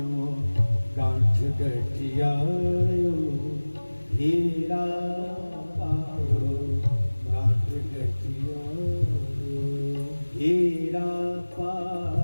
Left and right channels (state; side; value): inverted; both; correlation -1.00